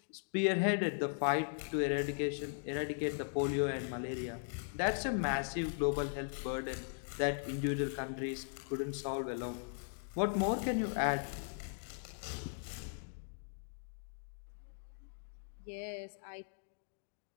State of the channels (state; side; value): silent; right; digital silence